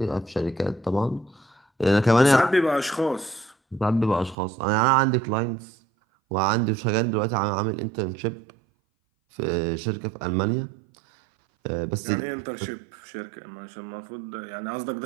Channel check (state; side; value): drops out; left; at 4.4 s